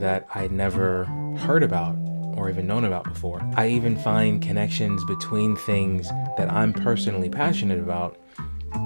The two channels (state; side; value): inverted; both; correlation -1.00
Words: that I'd never heard about or even known about before. I even find connections between things that I'm personally passionate about